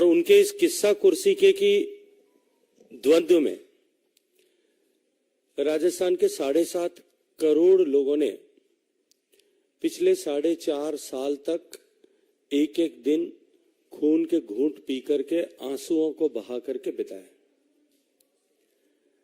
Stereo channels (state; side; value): identical; both; correlation 1.00